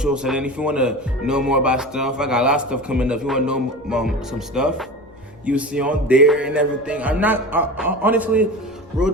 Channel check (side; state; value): both; normal; correlation 0.31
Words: And then if you want to know more about stuff, I got a lot of stuff coming up. If you want to know some stuff, you see on there and everything. Honestly, real